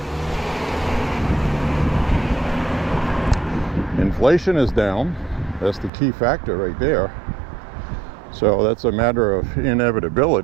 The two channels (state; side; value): drops out; left; at 5.9 s